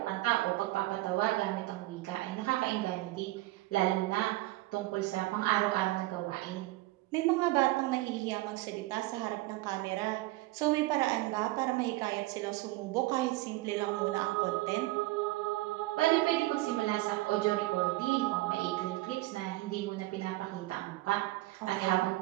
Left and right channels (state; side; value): quieter; left; 19.2 dB